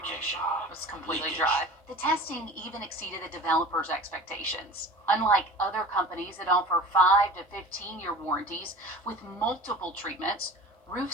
It's completely dry. The testing even exceeded the developers' expectations. Unlike other companies that offer 5 to 15-year warranties with multiple treatments, Roof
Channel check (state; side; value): normal; both; correlation 0.39